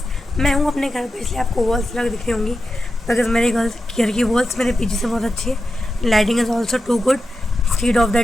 मैं हूँ अपने घर पे, इसलिए आपको वॉल्स लग दिख रही होंगी बिकॉज मेरे घर की वॉल्स मेरे पीजी से बहुत अच्छी है। Lighting is also too good street of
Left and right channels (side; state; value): both; normal; correlation 0.90